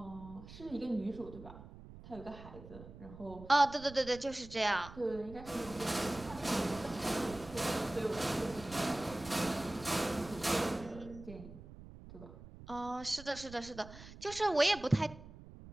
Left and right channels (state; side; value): noise; right; rumble, 16 dB below the sound